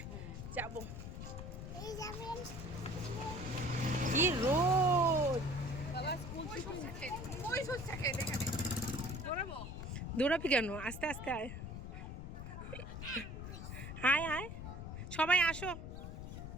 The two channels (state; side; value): noise; left; rumble, 8 dB below the sound